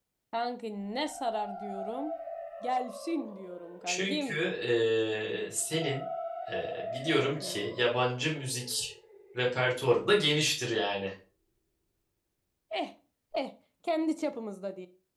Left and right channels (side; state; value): both; identical; correlation 1.00